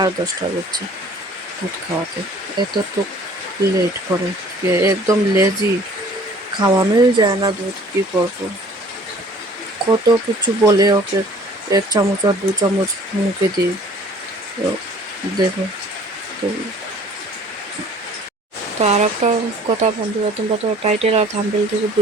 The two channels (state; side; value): normal; both; correlation 0.52